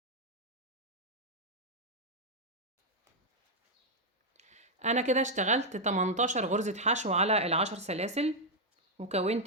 أنا كده اشتغلت 18 غرزة حشو على ال10 سلاسل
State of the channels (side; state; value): both; normal; correlation -0.02